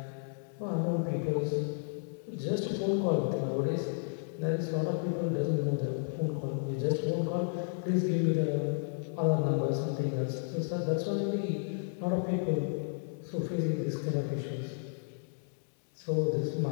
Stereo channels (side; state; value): right; silent; digital silence